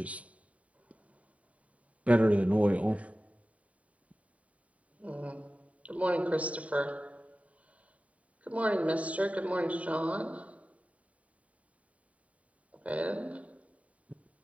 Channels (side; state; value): left; late; 0.067 ms